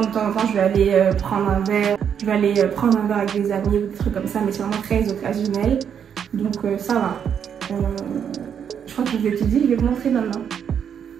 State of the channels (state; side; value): quieter; left; 8.0 dB